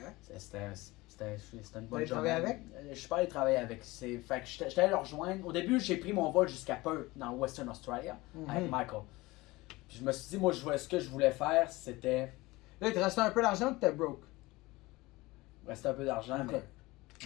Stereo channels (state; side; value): quieter; right; 20.9 dB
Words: C'était une bonne allé travailler avec? Je suis pas allé travailler avec. Fait que j'étais allé le rejoindre. Au début, j'ai pris mon vol jusqu'à Perth, dans Western Australia, avec Michael. Puis je me suis dit, moi, ce que je voulais faire, c'était Là, il te restait un peu d'argent ou t'es broke? rester un peu d'argent, Ok.